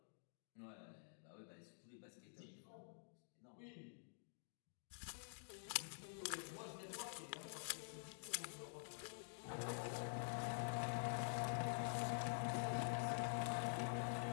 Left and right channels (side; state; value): right; silent; digital silence